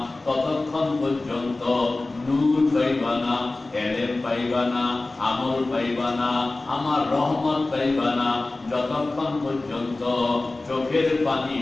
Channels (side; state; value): right; quieter; 3.1 dB